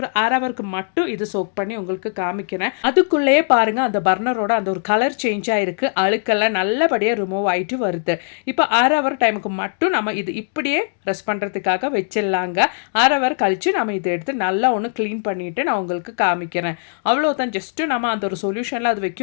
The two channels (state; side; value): silent; right; 66 dB below the other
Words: 1/2 ஹவருக்கு மட்டும் இது சோக் பண்ணி உங்களுக்கு காமிக்கிறேன். அதுக்குள்ளேயே பாருங்கள் அந்த பர்னரோட அந்த ஒரு கலர் சேஞ்ச் ஆகிருக்கு. அழுக்கெல்லாம் நல்லபடியாக ரிமூவ் ஆகிட்டு வருது. இப்போ 1/2 ஹவர் டைமுக்கு மட்டும் நம்ம இது இப்படியே ரெஸ்ட் பண்ணுறதுக்காக வச்சிடலாங்க. 1/2 ஹவர் கழித்து நம்ம இதை எடுத்து நல்லா ஒன்று க்ளீன் பண்ணிவிட்டு நான் உங்களுக்கு காமிக்கிறேன். அவ்வளோதான். ஜஸ்ட்டு நம்ம அந்த ஒரு சொல்யூஷனில் அது